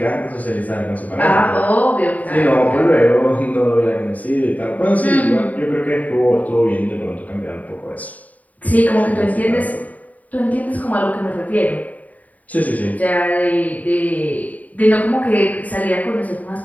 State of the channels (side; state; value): right; late; 0.073 ms